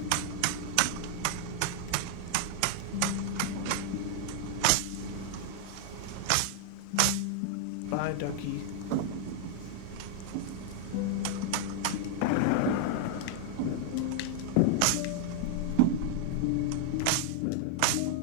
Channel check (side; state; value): both; different; correlation 0.00